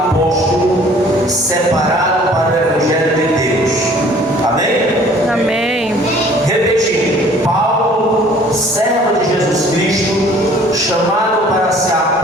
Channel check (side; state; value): both; normal; correlation 0.53